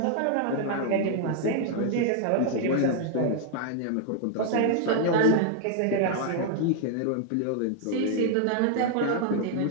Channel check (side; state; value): both; different; correlation 0.00